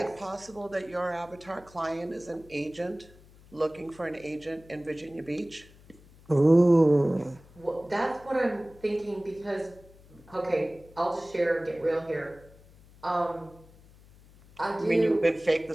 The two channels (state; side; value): noise; left; hum, 24 dB below the sound